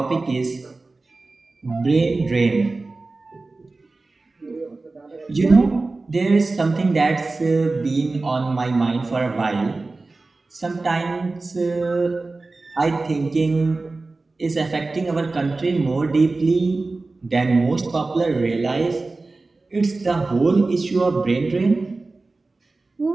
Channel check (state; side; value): quieter; left; 3.5 dB